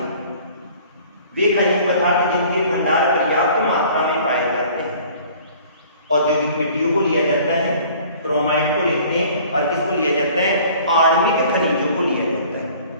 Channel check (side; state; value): both; inverted; correlation -0.51